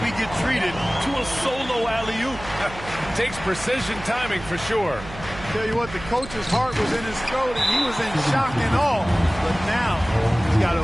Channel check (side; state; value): right; noise; hum, 14 dB below the sound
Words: we get treated to a solo alley-oop. Takes precision timing for sure. Tell you what, the coach's heart was in his throat and he was in shock and awe. But now he's got